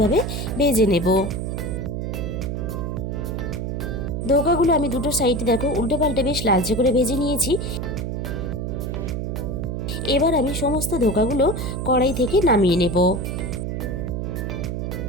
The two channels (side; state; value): right; noise; hum, 3 dB below the sound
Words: ভেজে নেব। ধোকাগুলো আমি দুটো সাইডে দেখো উল্টে পাল্টে বেশ লালচে করে ভেজে নিয়েছি। এবার আমি সমস্ত ধোকাগুলো কড়াই থেকে নামিয়ে নেব।